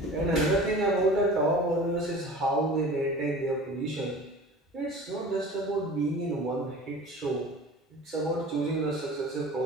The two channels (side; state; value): both; normal; correlation 0.40